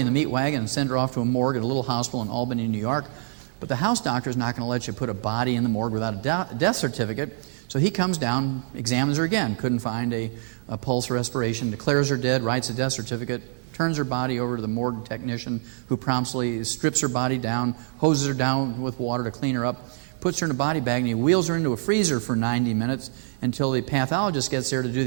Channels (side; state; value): left; silent; 62 dB below the other